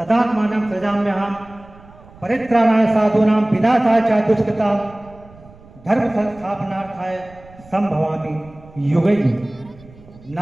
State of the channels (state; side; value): noise; right; rumble, 23 dB below the sound